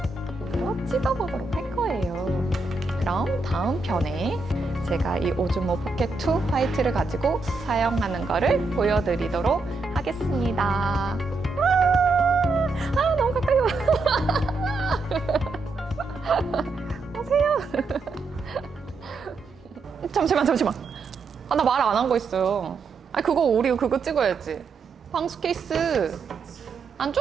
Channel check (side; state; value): left; quieter; 3.9 dB